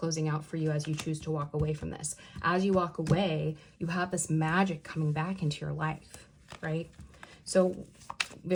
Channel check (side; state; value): both; identical; correlation 1.00